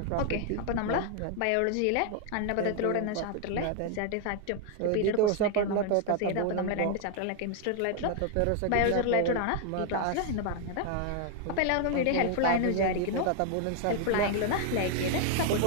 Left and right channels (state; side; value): different; both; correlation 0.00